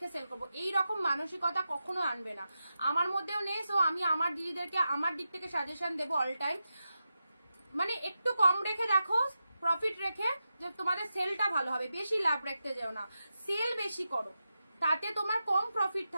সেল করবো, এইরকম মানসিকতা কখনো আনবে না, আমার মধ্যেও নেই। সো আমি আমার দিদিদেরকে আমার দিক থেকে সাজেশন দেবো অল টাইম, মানে একটু কম রেখে দেখো, প্রফিট রেখে, যে তোমাদের সেলটা ভালো হবে। বেশি লাভ রাখতে যাও না, সেল বেশি করো, তাতে তোমার কম প্রফিট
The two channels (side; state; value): both; inverted; correlation -0.90